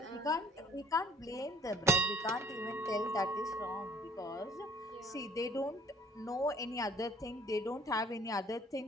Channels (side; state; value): both; normal; correlation 0.56